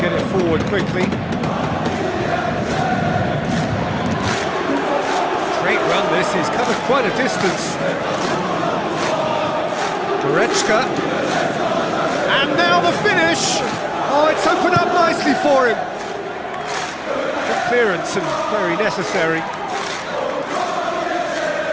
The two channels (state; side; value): identical; both; correlation 1.00